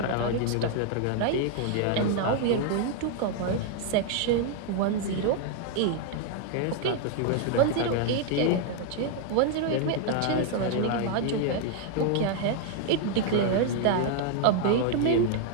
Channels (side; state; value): both; different; correlation 0.00